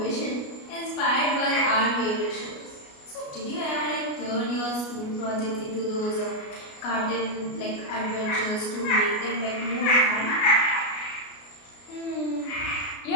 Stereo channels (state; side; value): late; right; 33 ms